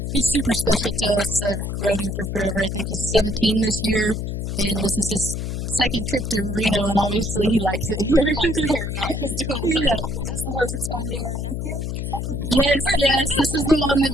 He's super special to us. I've rode him for forever. I think he's 17 this year, and this is his second trip to Reno, and obviously he likes it here. He likes it here, yeah. He's doing well. Is this the horse that's going to your nephew? Is that the Yes. This is the one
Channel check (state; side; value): noise; left; hum, 3 dB below the sound